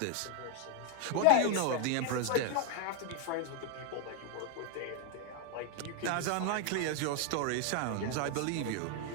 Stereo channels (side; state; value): both; different; correlation 0.00